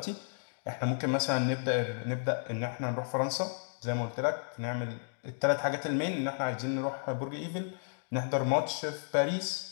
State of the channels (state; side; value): silent; right; digital silence